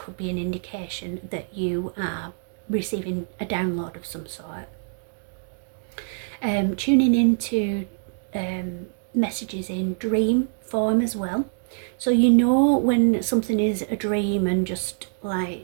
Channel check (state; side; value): silent; left; digital silence